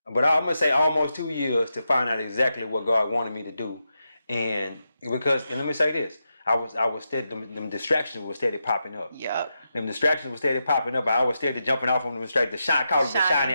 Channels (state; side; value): inverted; both; correlation -0.87